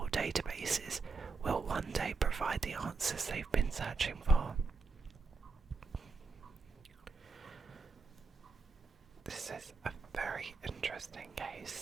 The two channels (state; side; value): quieter; left; 4.3 dB